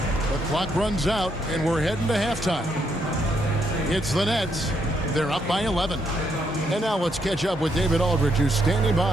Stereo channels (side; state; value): both; normal; correlation 0.75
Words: The clock runs out, and we're heading to halftime. It's the Nets. They're up by 11. And now let's catch up with David Aldridge, who's standing